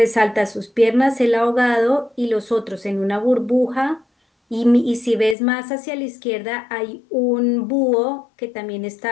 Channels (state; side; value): drops out; right; at 5.4 s